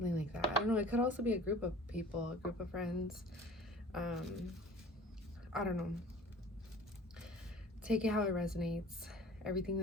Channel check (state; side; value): normal; both; correlation 0.45